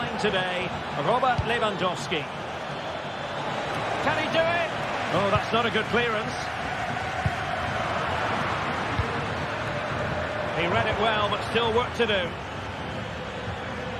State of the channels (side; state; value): both; identical; correlation 1.00